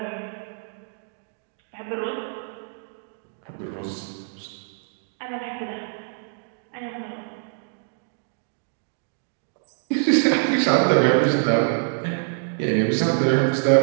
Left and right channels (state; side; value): silent; left; digital silence